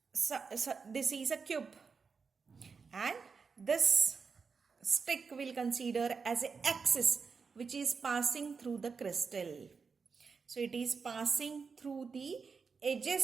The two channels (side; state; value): left; quieter; 5.2 dB